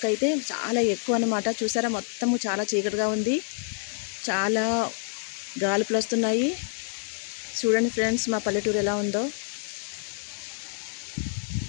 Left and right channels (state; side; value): silent; right; 60 dB below the other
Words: అయితే చాలా ఎక్కువ అనమాట. చూసారా, మొత్తము చాలా చీకటిగా ఉంది, చాలా గాలుపులు వస్తున్నాయి. చూడండి ఫ్రెండ్స్, మా పల్లెటూరు ఎలా ఉందో.